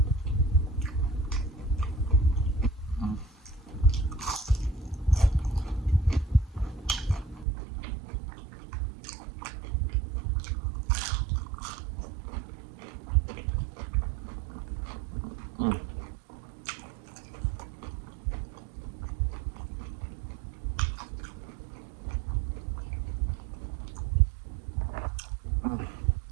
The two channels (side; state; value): left; drops out; at 7.5 s